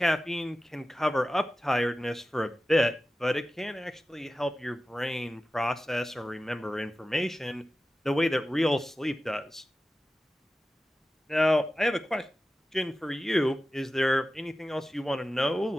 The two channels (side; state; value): both; normal; correlation 0.95